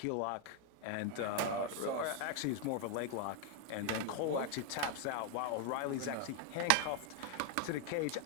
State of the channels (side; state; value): both; different; correlation 0.00